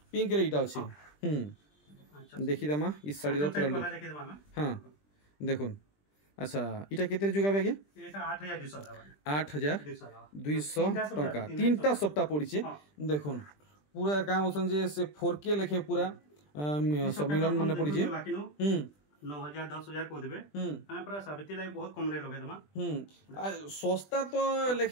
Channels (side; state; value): right; late; 20 ms